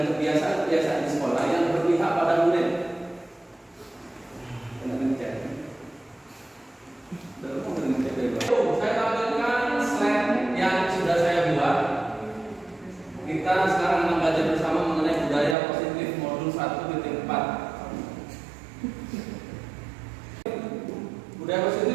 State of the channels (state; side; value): drops out; left; at 15.6 s